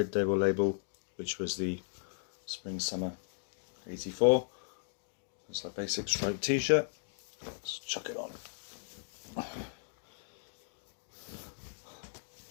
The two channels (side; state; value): right; silent; digital silence